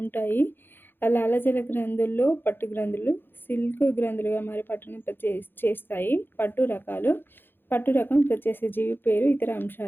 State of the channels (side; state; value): right; late; 0.10 ms